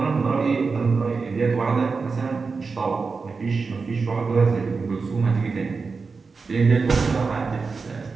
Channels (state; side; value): quieter; left; 4.6 dB